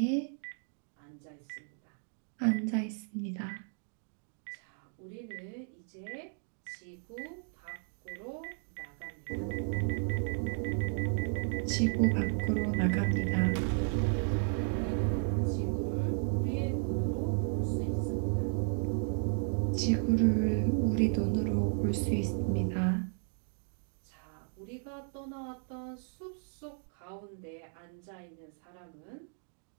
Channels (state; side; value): silent; left; 55 dB below the other